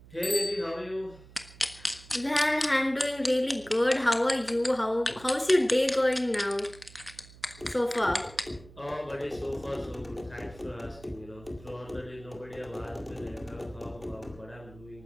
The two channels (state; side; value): noise; right; hum, 21 dB below the sound